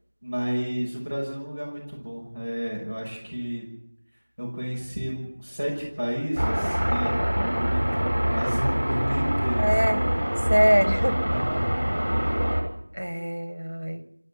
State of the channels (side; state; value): both; inverted; correlation -1.00